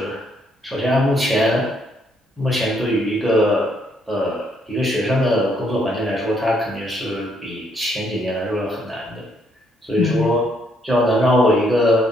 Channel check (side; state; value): both; normal; correlation 0.71